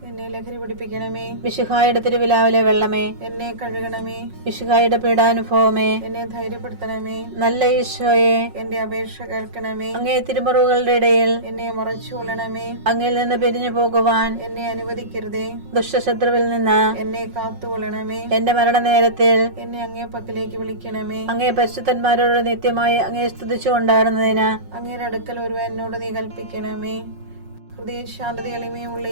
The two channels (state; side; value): late; left; 5.5 ms